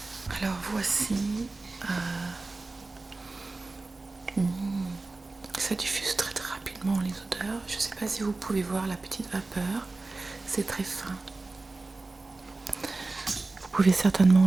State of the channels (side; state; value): left; quieter; 3.4 dB